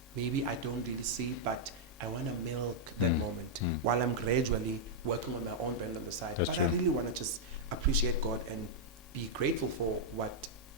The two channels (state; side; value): normal; both; correlation -0.05